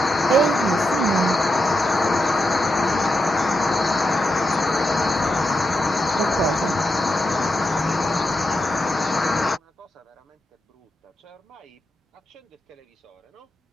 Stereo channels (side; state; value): both; normal; correlation 0.86